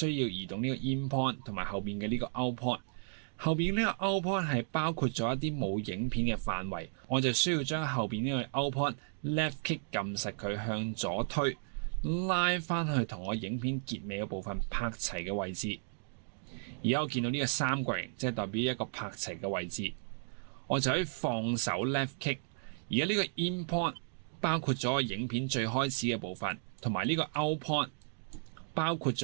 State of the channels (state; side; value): silent; left; digital silence